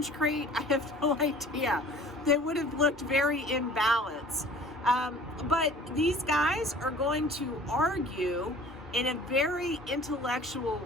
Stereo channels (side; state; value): both; normal; correlation 0.47